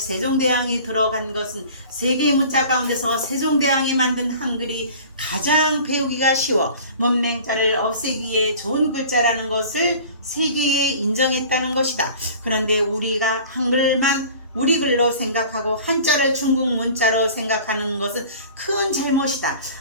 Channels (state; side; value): inverted; both; correlation -0.43